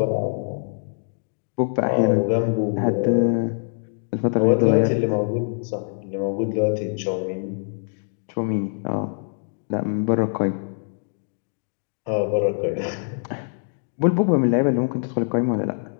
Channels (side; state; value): right; silent; digital silence